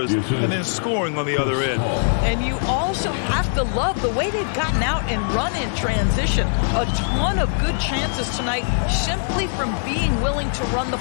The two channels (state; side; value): silent; right; digital silence